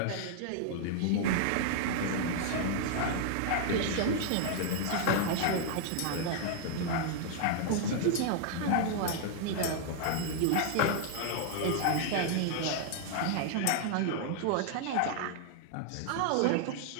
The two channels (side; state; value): both; different; correlation -0.01